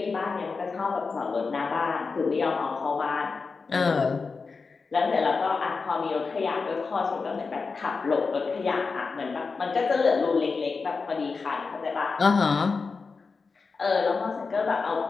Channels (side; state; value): right; quieter; 4.6 dB